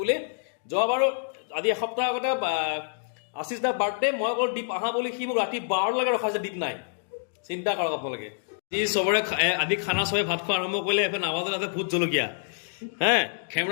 বুলি যোৱাবাৰো আজি এসপ্তাহ আগতে আশিস দা বাৰ্থডে মই অকল দীপ আহা বুলি সি মোক ৰাতি 12লৈকে ৰখাইছে দীপ নাই চিন্তা কৰক আপোনালোকে যি চবৰে আজি খানা চবে ভাত খোৱা আৰম্ভ কৰিলে এফালে নাৱাজতে ভোট জলকীয়া হে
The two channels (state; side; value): silent; right; digital silence